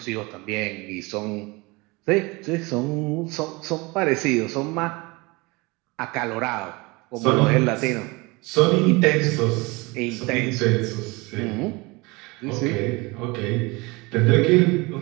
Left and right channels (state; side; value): quieter; left; 25.2 dB